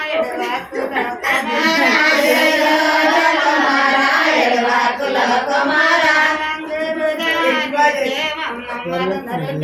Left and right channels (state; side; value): identical; both; correlation 1.00